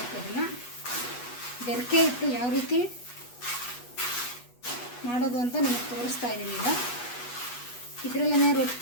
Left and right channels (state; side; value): late; right; 8.2 ms